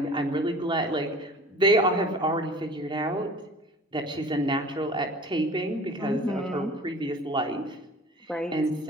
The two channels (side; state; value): both; normal; correlation 0.44